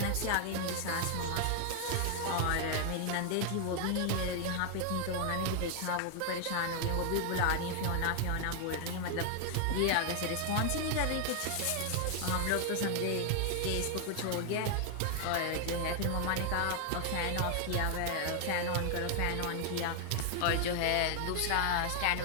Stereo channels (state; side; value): different; both; correlation 0.00